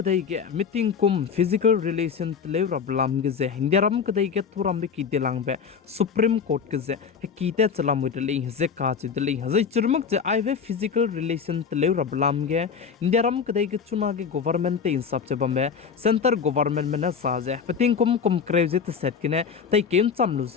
ge meeting kum physical relation tlev rablam ge ze India ram kadai ge turam be ki delang be Supreme Court ge ze kite chalam dele ze ka chu dele ze churmak je ai ve physical relation tlev rablam ge India ram kadai ge chuna ge government te insap che bambe center government me na sa je meeting kum kreve te set kine tai kem chamlu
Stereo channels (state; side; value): quieter; right; 6.3 dB